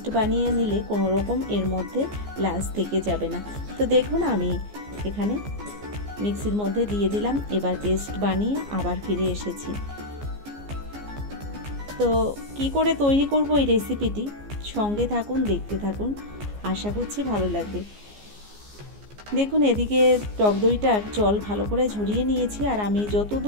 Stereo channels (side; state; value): left; late; 14 ms